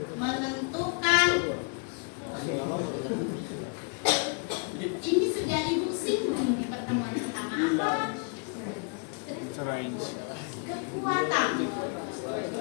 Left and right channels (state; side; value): quieter; right; 38.9 dB